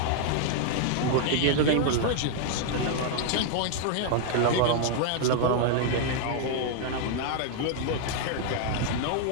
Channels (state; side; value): different; both; correlation 0.00